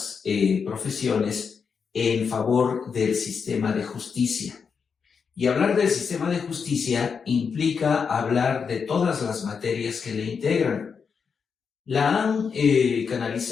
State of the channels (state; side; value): quieter; right; 6.0 dB